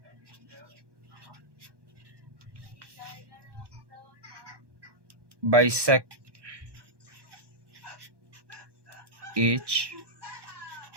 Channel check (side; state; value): left; late; 1.1 ms